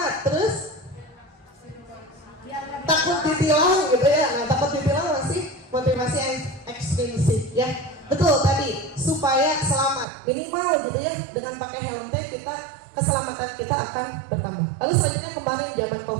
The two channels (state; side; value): drops out; left; at 10.1 s